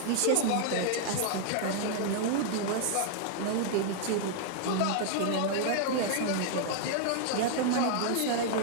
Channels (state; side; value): different; both; correlation -0.01